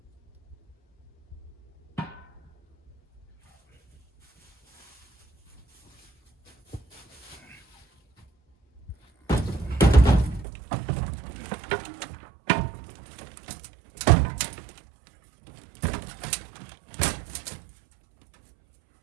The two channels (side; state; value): left; drops out; at 10.5 s